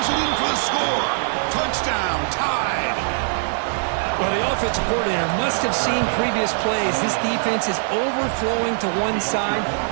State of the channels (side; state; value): left; silent; digital silence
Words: it in for the score. Touchdown, tied. Well, the offensive coordinator must have seen previous plays. This defense is overflowing to one side,